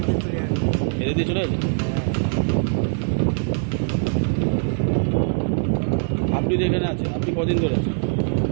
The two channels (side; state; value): left; silent; 57 dB below the other